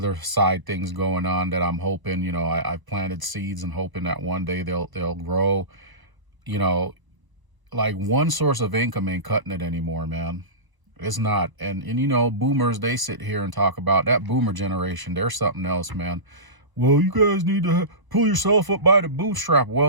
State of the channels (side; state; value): left; late; 1.0 ms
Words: side things going on that I'm hoping, I've planted seeds and hoping that one day they'll grow. Like one source of income ain't cutting it anymore, man. It's not. And boomers, they sit here and talk about that boomer generation. They're something else, man. Well, you guys need to pull yourself up by the bootstrap.